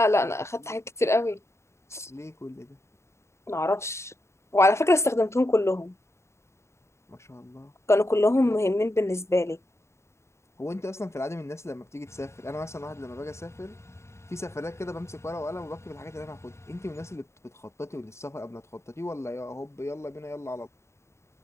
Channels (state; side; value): late; right; 0.13 ms